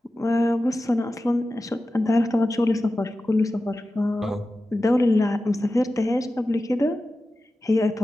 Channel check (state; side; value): normal; both; correlation 0.94